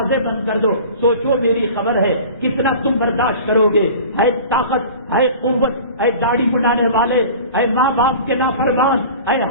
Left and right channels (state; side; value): inverted; both; correlation -0.40